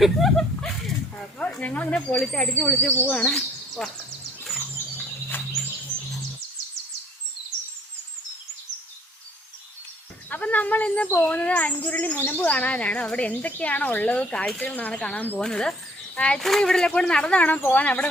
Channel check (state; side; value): normal; both; correlation 0.59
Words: അപ്പോൾ ഞങ്ങളിങ്ങനെ അടിച്ച് പൊളിച്ച് പോവാണ്. അപ്പം നമ്മൾ ഇന്ന് പോകുന്നത് അഞ്ചുരുളി മുനമ്പ് കാണാനാണ്. അവിടെ എന്തൊക്കെയാണോ ഉള്ളത് കാഴ്ചകളാണ് കാണാൻ പോകുന്നത്. ആക്ച്വലി ഇവിടെ കൂടെ നടന്നു വേണം പോകാൻ. അവിടെ